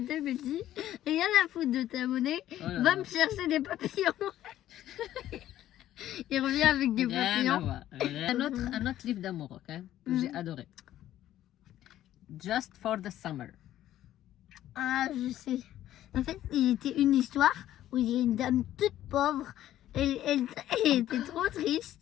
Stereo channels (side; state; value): right; quieter; 12.8 dB